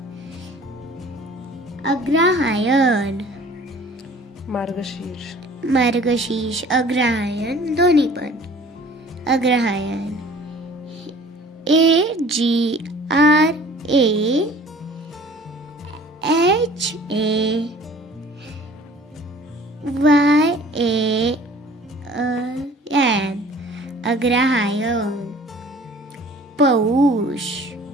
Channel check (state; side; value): normal; both; correlation 0.50